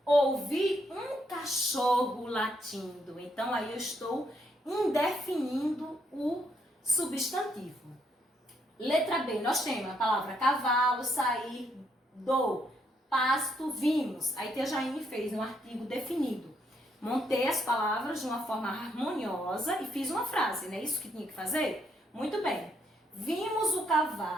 Ouvi um cachorro latindo. Então, aí eu estou indefinindo o substantivo. Letra B, nós temos a palavra cavalo, sair do pasto, vimos. Aí Tia Jaine fez um artigo definido. Montei as palavras de uma forma harmoniosa e fiz uma frase, não é isso que tinha que fazer? Muito bem. Vimos o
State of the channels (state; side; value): normal; both; correlation 0.74